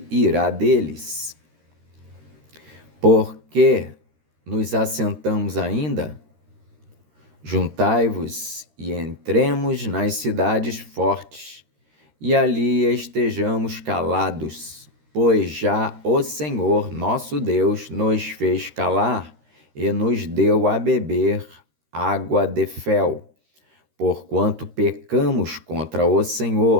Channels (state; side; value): late; left; 13 ms